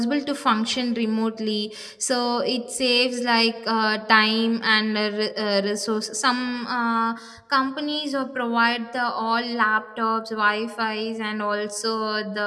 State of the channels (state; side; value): identical; both; correlation 1.00